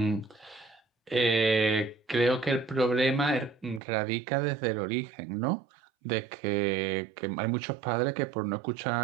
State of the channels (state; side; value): drops out; left; at 3.8 s